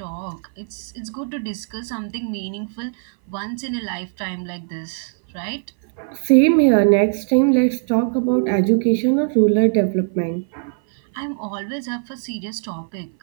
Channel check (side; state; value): left; silent; 58 dB below the other